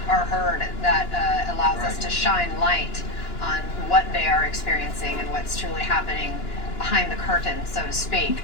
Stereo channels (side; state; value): right; late; 2.9 ms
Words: are heard. That allows us to shine light on what they are experiencing and what's truly happening behind the curtain, so to speak.